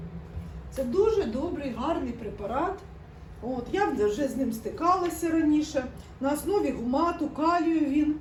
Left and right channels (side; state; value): both; identical; correlation 1.00